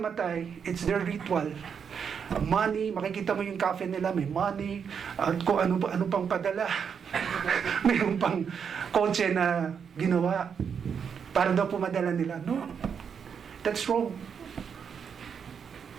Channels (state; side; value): quieter; left; 6.9 dB